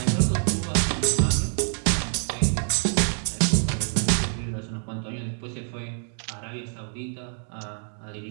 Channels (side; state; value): left; silent; 60 dB below the other